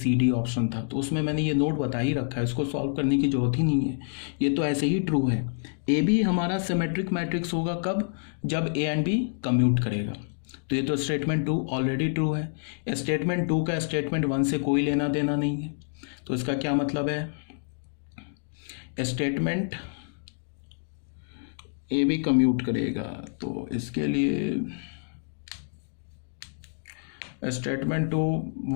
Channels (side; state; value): right; silent; digital silence